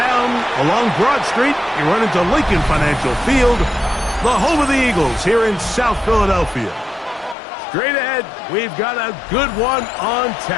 along Broad Street. You run into Lincoln Financial Field, the home of the Eagles here in South Philadelphia. Straight ahead, we've got a good one on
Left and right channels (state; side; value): drops out; right; at 7.4 s